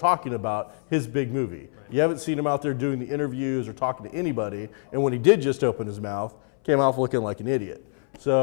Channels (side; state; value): right; silent; 61 dB below the other